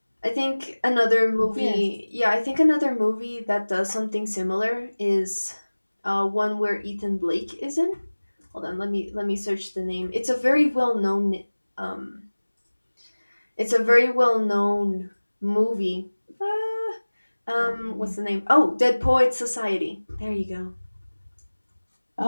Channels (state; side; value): inverted; both; correlation -1.00